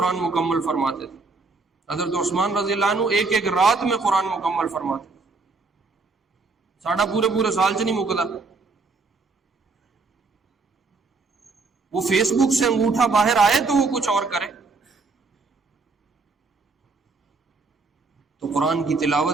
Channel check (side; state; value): left; quieter; 4.0 dB